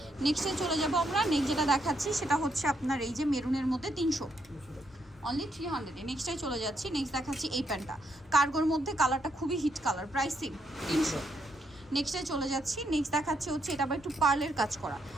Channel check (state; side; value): normal; both; correlation 0.77